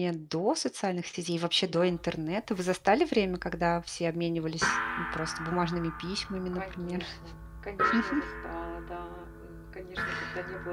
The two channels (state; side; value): identical; both; correlation 1.00